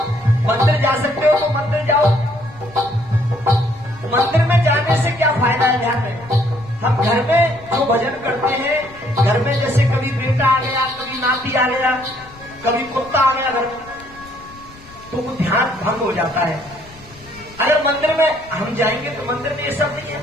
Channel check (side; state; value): left; noise; rumble, 22 dB below the sound